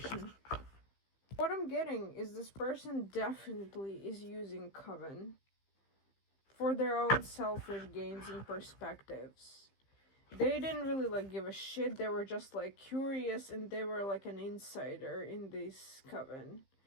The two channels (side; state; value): right; late; 15 ms